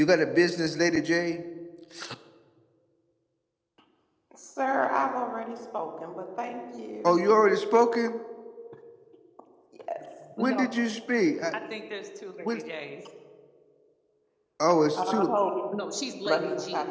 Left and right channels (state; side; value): identical; both; correlation 1.00